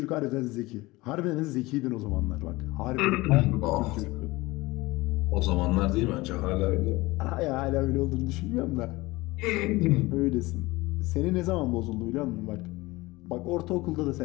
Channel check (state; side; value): quieter; right; 21.0 dB